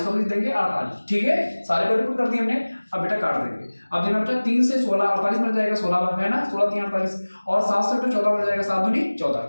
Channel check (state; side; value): inverted; both; correlation -1.00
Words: को लिख देंगे 48, ठीक है। सारे को रिपोर्ट कर दिए हमने। अब बेटा काट देंगे। अब देखना बेटा 3 से 16 48 मिल जाएगा, 16 है ना, 16 3 48 और 7 से बेटा 14 मिल जाएगा, 7 दूनी 14,